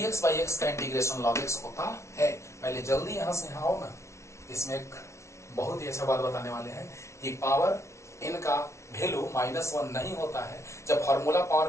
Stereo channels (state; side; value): late; right; 0.13 ms